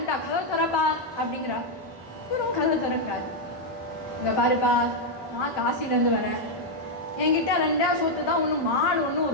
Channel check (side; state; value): both; normal; correlation 0.00